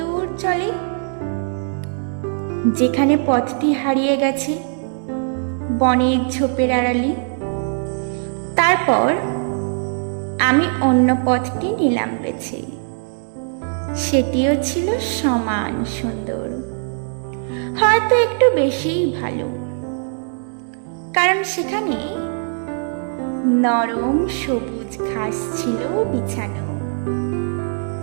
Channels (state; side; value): silent; left; 65 dB below the other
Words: চলে, যেখানে পথটি হারিয়ে গেছে বনের ঝোপের আড়ালে। তারপর আমি অন্য পথটি নিলাম বেছে। সেটিও ছিল সমান সুন্দর, হয়তো একটু বেশিই ভালো, কারণ সেখানে নরম সবুজ ঘাস ছিল বিছানো।